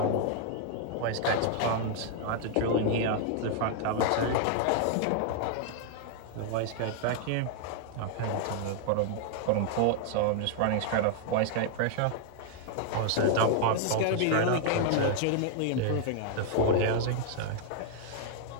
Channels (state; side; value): different; both; correlation 0.00